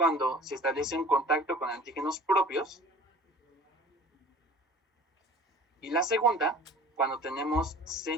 se establece un contacto con antígenos propios, y la segunda, cuando tenemos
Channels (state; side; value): normal; both; correlation 0.45